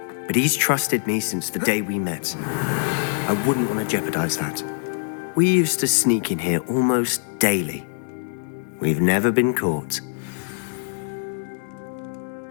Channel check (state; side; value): silent; right; digital silence